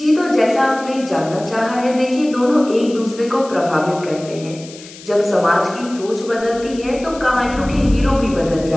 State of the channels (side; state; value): left; noise; hiss, 18 dB below the sound